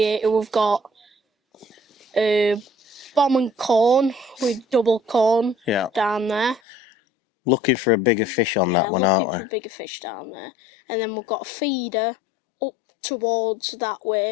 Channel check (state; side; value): drops out; right; at 6.6 s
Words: we've got bomb and corn with double corn down there. Looking for a bigger fish on that one, aren't we? Yeah, looking for a bigger fish down there. And then we've got a feeder up towards that